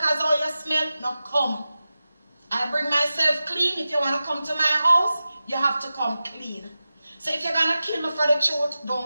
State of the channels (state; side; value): inverted; both; correlation -0.94